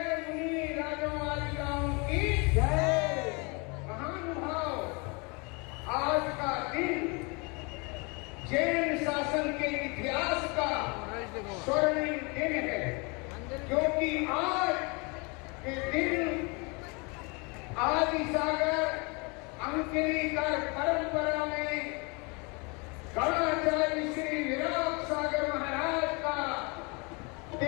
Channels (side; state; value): right; quieter; 30.2 dB